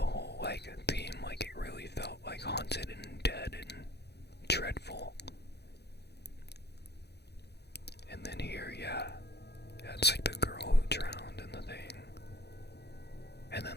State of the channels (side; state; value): right; late; 0.48 ms